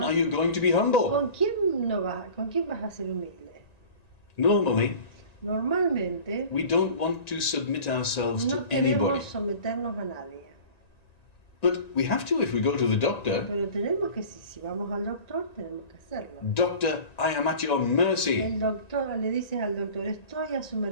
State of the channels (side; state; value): right; late; 1.9 ms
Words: are you going to be humble? ¿con quién vas a ser humilde? Normally, Normalmente we don't want to submit ourselves no to anybody. queremos someternos a nadie. But we have to if we go to the doctor. Pero tenemos que, si vamos al doctor, tenemos que hacerlo. Doctor, I am at your mercy. El doctor le dices al doctor, estoy a su